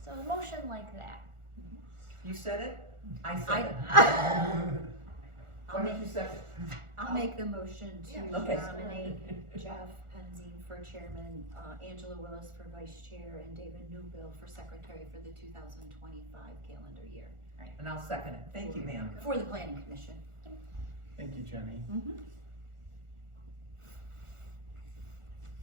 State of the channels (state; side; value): late; left; 1.4 ms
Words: So a motion like that. You said it? I said it. Why don't you second? I'll make the motion to Yeah. Okay. nominate Jeff Penzine for chairman, Angela Willis for vice chair, and David Newbill for secretary for the 2025 calendar year And I'll second it. Thank you, ma'am. for the planning commission. Thank you, Jenny. Mhm.